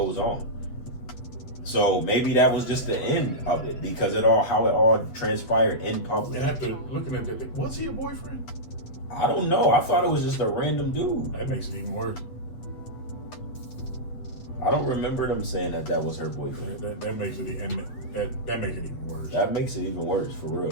on. So maybe that was just the end of it, because how it all transpired in public. And after looking at that, was he a boyfriend? I don't know. I thought it was just a random dude. That makes it even worse. I don't remember them saying that was her boyfriend. That makes it, and that makes it even worse. That makes it even worse, for real.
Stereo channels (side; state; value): right; late; 8.2 ms